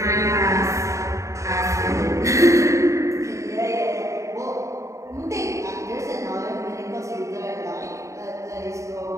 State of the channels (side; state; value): left; late; 0.15 ms